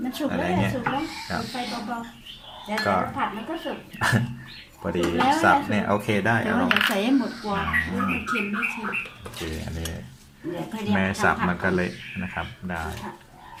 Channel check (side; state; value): both; identical; correlation 1.00